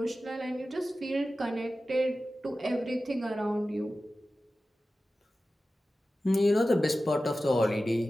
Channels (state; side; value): normal; both; correlation 0.94